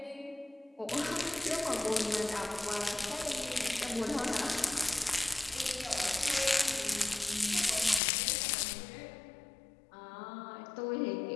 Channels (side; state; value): right; drops out; at 8.0 s